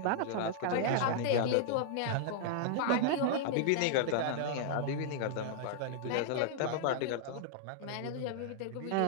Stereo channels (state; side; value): different; both; correlation -0.01